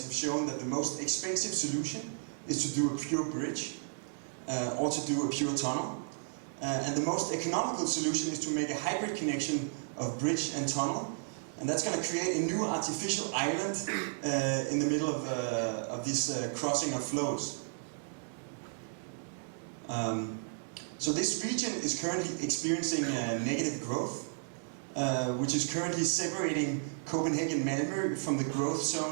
have shown that the most expensive solution is to do a pure bridge or to do a pure tunnel. And the most economical solution is to make a hybrid connection of bridge and tunnel. And that's going to create a new artificial island in the middle of this crossing of flows. So this region is currently experiencing negative growth, which is currently separating Copenhagen Malmö from the growth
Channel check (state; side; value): silent; left; digital silence